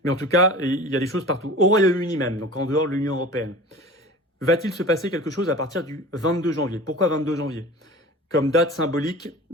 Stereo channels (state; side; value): normal; both; correlation 0.38